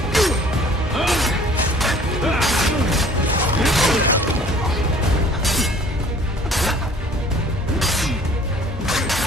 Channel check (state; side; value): normal; both; correlation 0.52